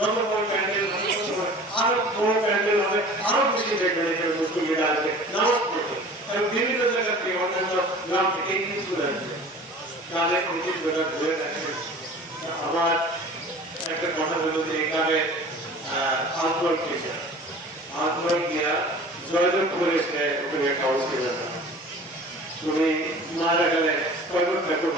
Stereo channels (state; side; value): normal; both; correlation 0.43